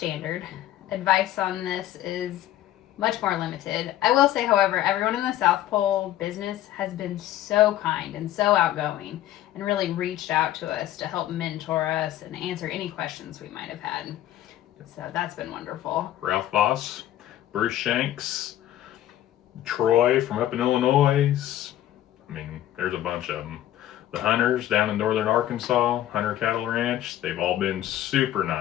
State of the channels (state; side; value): quieter; right; 13.1 dB